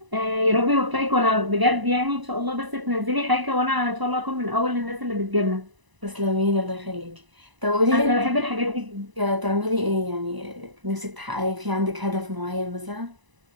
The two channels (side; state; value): left; late; 1.0 ms